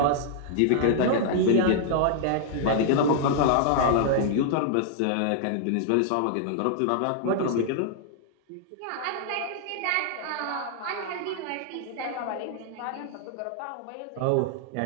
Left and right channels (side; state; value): both; different; correlation -0.01